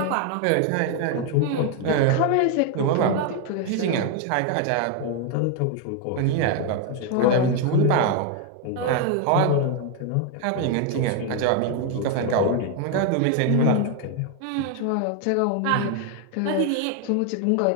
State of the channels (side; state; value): both; different; correlation 0.01